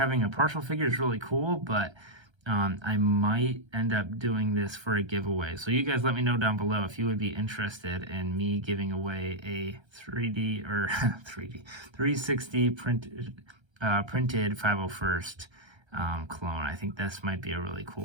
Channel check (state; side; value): late; left; 1.3 ms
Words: a partial figure is really cool, but I might end up doing this for a giveaway. So you guys let me know down below if you would be interested in me giving away a 360 printed 501st clone. I think this might be a really